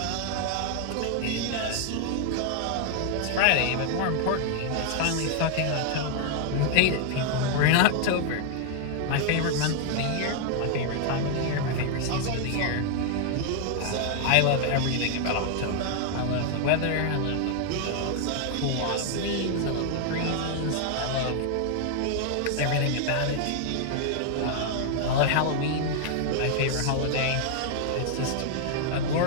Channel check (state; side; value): different; both; correlation 0.00